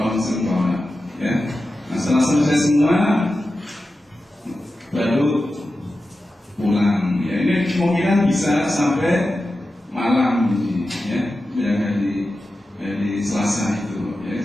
bawah. Ya. Nah, setelah selesai semua baru pulang. Ya, ini kemungkinan bisa sampai malam ini, ya, yang dari Selasa itu. Ya,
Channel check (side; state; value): both; normal; correlation 0.92